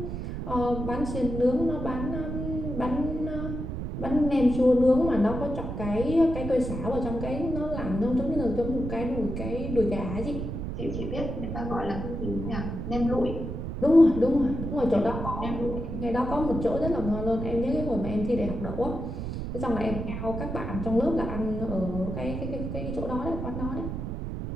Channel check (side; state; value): right; noise; rumble, 5 dB below the sound